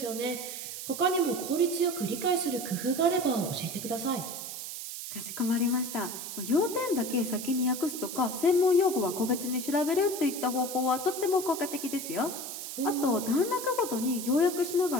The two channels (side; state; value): right; noise; hiss, 8 dB below the sound